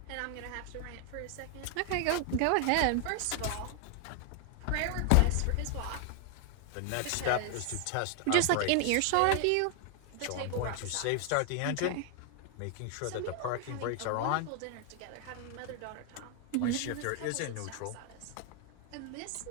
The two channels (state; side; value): different; both; correlation 0.00